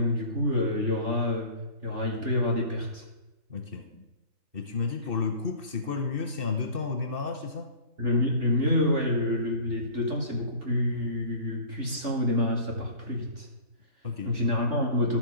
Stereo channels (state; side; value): late; left; 3.4 ms